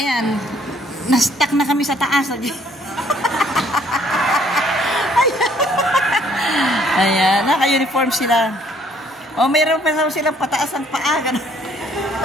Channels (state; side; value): normal; both; correlation 0.63